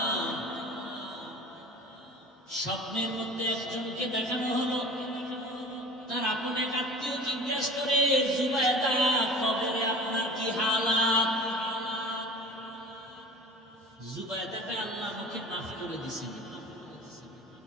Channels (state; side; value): normal; both; correlation 0.41